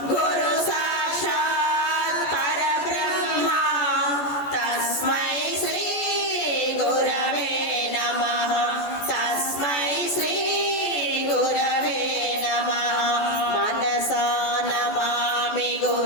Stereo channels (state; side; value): late; right; 14 ms